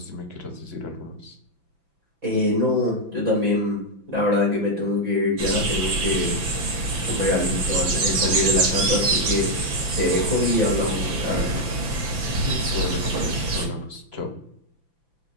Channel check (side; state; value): left; late; 6.0 ms